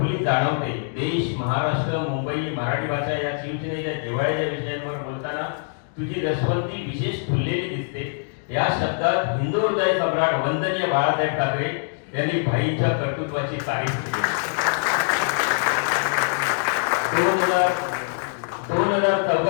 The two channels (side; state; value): right; silent; digital silence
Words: जाणवते. देश, महाराष्ट्र, मुंबई, मराठी भाषा या शिवसेनेच्या जिव्हाळ्याच्या विषयांवर बोलताना तुझी रसवंती विशेष फुललेली दिसते. या शब्दात हिंदू हृदय सम्राट वंदनीय बाळासाहेब ठाकरे यांनी भाईंच्या कर्तृत्वाची तारीफ केली.